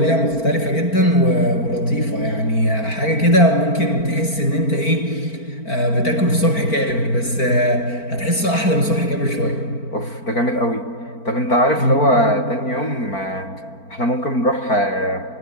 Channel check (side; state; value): right; late; 4.4 ms